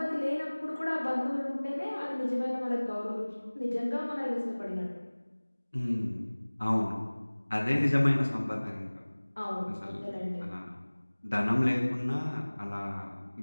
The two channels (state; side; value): inverted; both; correlation -1.00